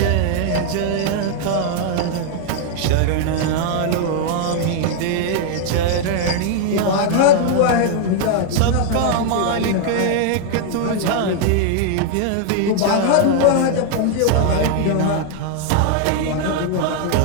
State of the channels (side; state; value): both; different; correlation 0.00